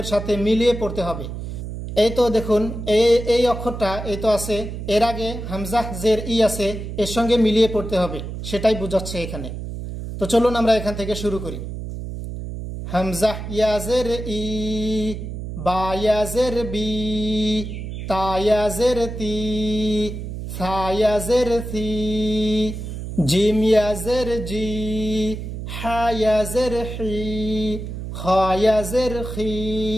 সাথে মিলিয়ে পড়তে হবে। এই তো দেখুন এই অক্ষরটা এই তো আছে, এর আগে হামজা জের ই আছে, এর সঙ্গে মিলিয়ে পড়তে হবে, সেটাই বোঝাচ্ছে এখানে। তো চলুন আমরা এখান থেকে শুরু করি। হামজা ইয়া জের ই, বা ইয়া জের বি, তা ইয়া জের তি, সা ইয়া জের সি, জিম ইয়া জের জি, হা ইয়া জের হি, খা ইয়া জের খি,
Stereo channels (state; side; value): noise; right; hum, 7 dB below the sound